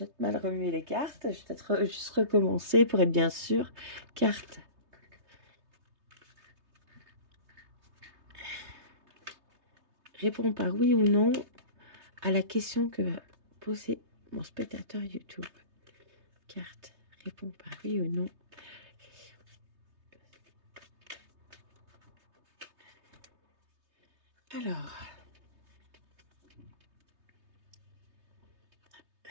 mal remuer les cartes. Je vais peut-être juste recommencer pour être bien sûr. Carte. Réponds par oui ou non à la question que va poser mon spectateur YouTube. Carte. Réponds par oui ou non. Alors.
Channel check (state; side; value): late; left; 3.2 ms